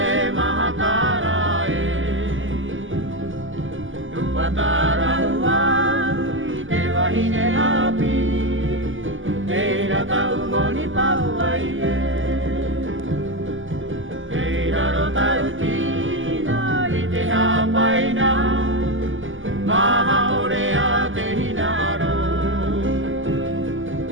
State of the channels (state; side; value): late; left; 0.58 ms